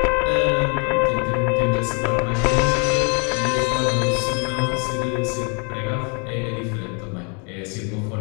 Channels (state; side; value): quieter; right; 36.4 dB